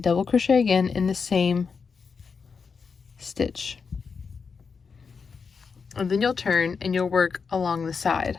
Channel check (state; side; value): quieter; right; 5.5 dB